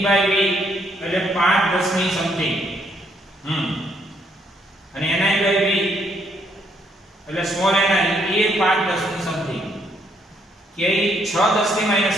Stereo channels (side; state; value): both; normal; correlation 0.71